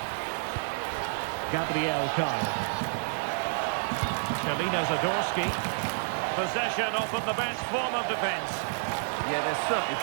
Gabriel Karl. Chalina Zadorsky. Possession often the best form of defence. Yeah, they're certainly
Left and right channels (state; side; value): silent; left; digital silence